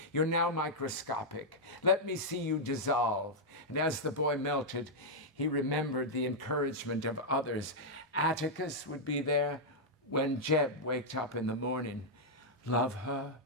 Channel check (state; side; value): normal; both; correlation -0.05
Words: You're now microscopic. Let me see you dissolve." And as the boy melted, he remembered the encouragement of others. Atticus would be there when Jeb waked up in the morning. "Love her,